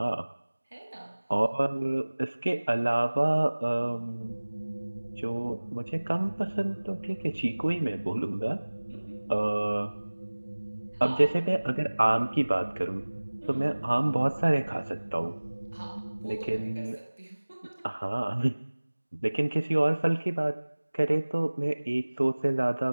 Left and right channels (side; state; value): both; inverted; correlation -1.00